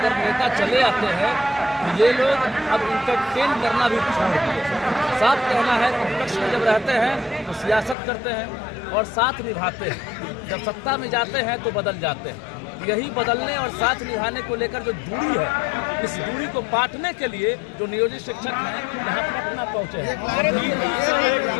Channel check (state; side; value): drops out; right; at 8.0 s